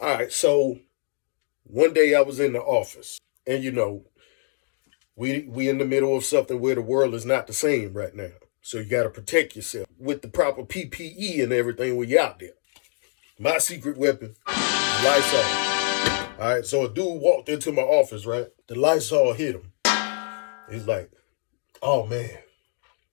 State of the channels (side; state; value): right; silent; 60 dB below the other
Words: right. So one day I was in the office and, you know, we in the middle of something where the world is not the same right now. So you got to protect yourself with the proper PPE and everything when you're out there. My secret weapon, Lysol. All right. So a dude walked into my office, right? The Lysol hit him. He's like, oh, man,